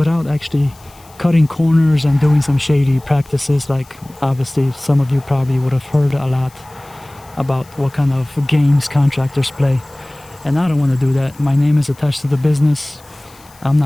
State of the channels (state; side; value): noise; left; hiss, 26 dB below the sound